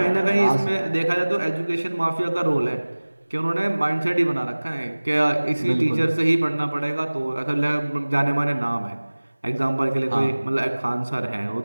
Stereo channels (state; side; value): inverted; both; correlation -1.00